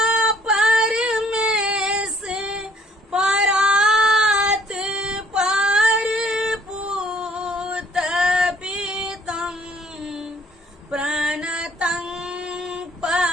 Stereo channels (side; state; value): both; normal; correlation 0.60